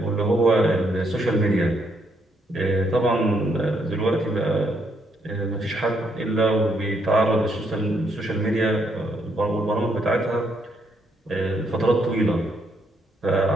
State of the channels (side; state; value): both; normal; correlation 0.75